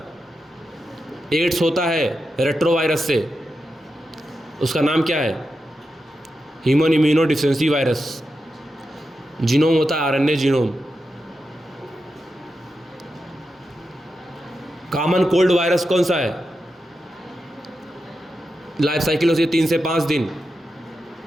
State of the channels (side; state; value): both; normal; correlation 0.88